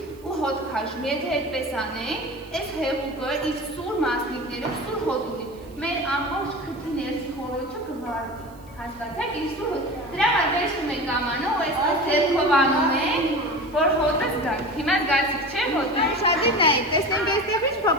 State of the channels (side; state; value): right; noise; hiss, 28 dB below the sound